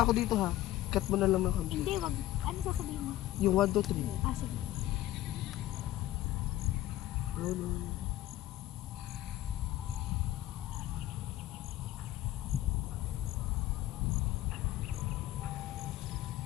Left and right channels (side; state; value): right; quieter; 14.9 dB